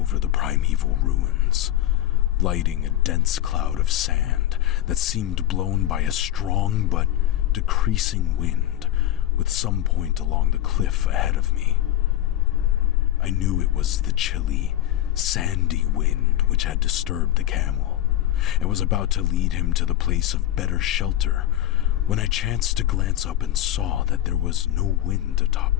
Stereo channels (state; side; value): quieter; right; 13.1 dB